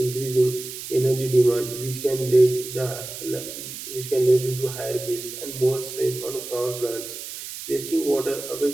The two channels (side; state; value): right; noise; hiss, 10 dB below the sound